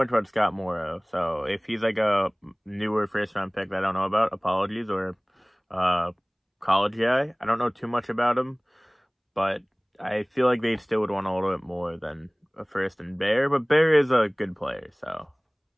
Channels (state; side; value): identical; both; correlation 1.00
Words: about Scott Morrow. So, if he's like a newer first-round pick that I don't know about, apologies. Or college guy. I don't know too much about him. But I feel like they still would want a little bit more than a first and Bear, but Bear is a good player, so